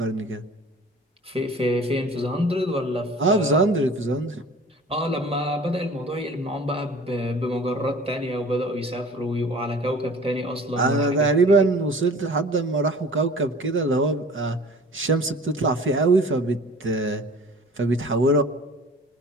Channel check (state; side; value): normal; both; correlation 0.45